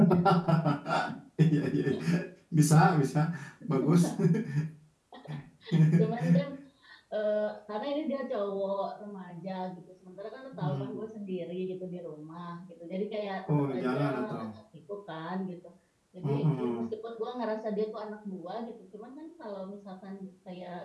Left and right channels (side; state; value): both; identical; correlation 1.00